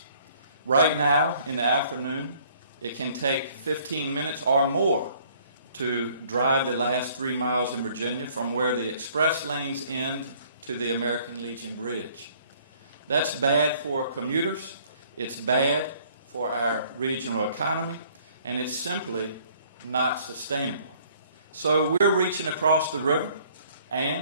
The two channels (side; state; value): both; inverted; correlation -0.59